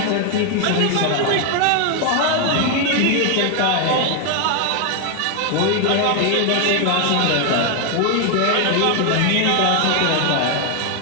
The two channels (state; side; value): different; both; correlation 0.01